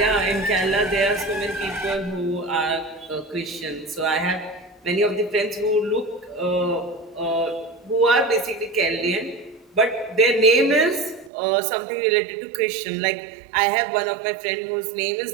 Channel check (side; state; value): left; drops out; at 11.3 s